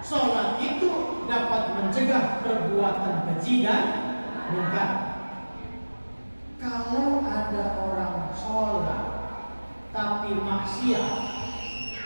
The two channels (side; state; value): both; inverted; correlation -1.00